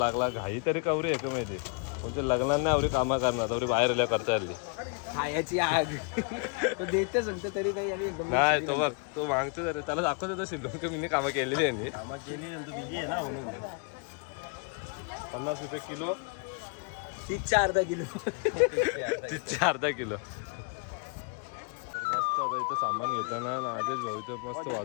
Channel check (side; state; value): right; quieter; 37.4 dB